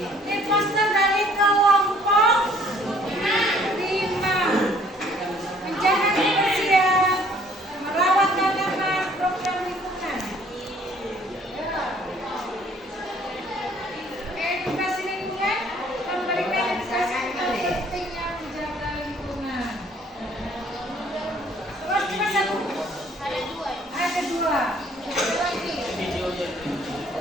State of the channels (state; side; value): normal; both; correlation 0.59